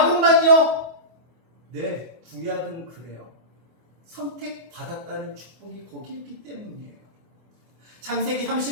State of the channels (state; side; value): late; left; 24 ms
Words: 네, 구약은 그래요. 선택받았다는 축복이 거기 있기 때문이에요. 창세기